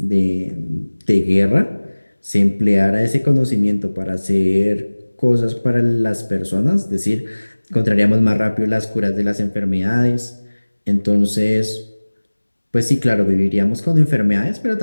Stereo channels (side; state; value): both; inverted; correlation -1.00